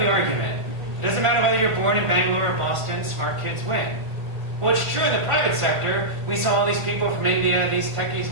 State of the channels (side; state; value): left; late; 1.5 ms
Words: argument. It doesn't matter whether you're born in Bangalore or Boston, smart kids win. Well, it's true in the private sector. We saw all these people from India, these